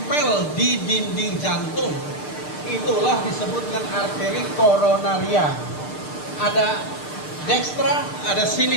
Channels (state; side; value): late; right; 6.6 ms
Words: di dinding jantung. Itulah disebut dengan arteri koronaria. Ada dekstra, ada